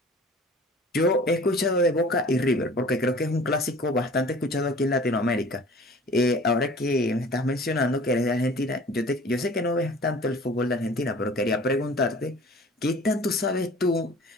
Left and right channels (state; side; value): normal; both; correlation 0.46